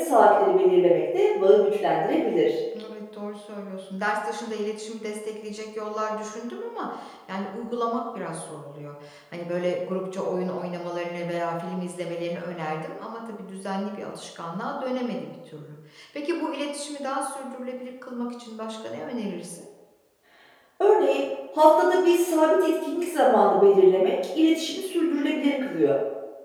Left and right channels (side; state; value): both; identical; correlation 1.00